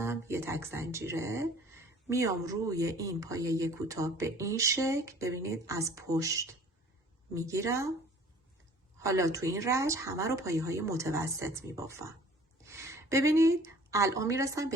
یه تک زنجیره، میام روی این پایه کوتاه به این شکل، ببینید از پشت میگیرم. حالا تو این رج همه رو پایه های متوسط میبافم. ببینید الان میرسم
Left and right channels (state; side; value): normal; both; correlation 0.50